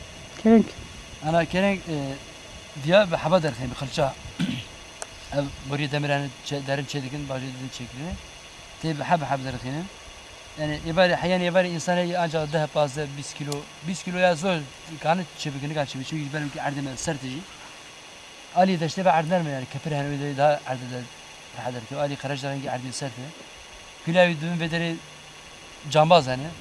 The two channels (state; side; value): identical; both; correlation 1.00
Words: كرنج انا كرنج ديا بحبدر خي بخلشا ev buraya demirhane derin çedikin bazı dedi çekilini. Tabi hab derkinin. Yani ibare hayal ibare insana ancak daha fazla 20 kilo ya zor kanı çevikini kaç çevik çünkü benim ki ardına sertici. Ali de işte ardına mı yani kefir hani daha ardına rahat ki Ali karajların ki ardına serti. Gülavi düğün vederi cambaz yani.